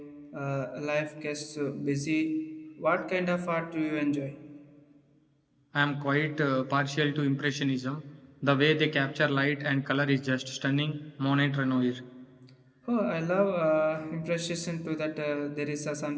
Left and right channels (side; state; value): both; identical; correlation 1.00